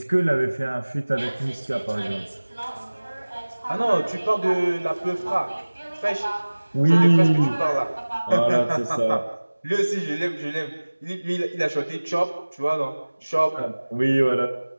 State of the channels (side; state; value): both; inverted; correlation -1.00